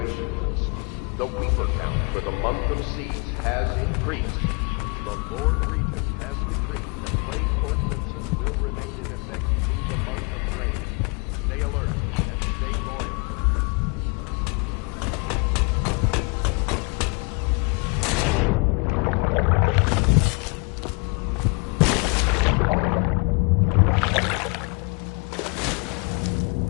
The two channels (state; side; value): quieter; right; 31.7 dB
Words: list. The Weeper count for the month of siege has increased. The Lord Regent has decreed that plague ordinances will remain in effect through the month of rain. Stay alert and stay loyal.